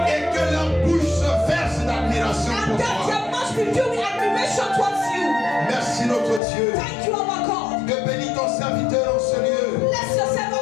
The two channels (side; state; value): right; drops out; at 6.4 s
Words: just be filled with admiration towards you. Merci notre Dieu Thank you, our God. de bénir ton serviteur en ce lieu. Bless yourself